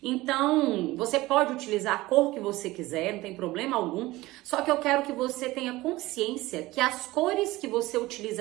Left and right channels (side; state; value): left; quieter; 18.8 dB